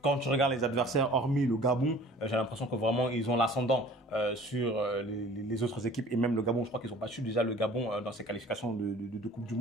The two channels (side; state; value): both; normal; correlation 0.48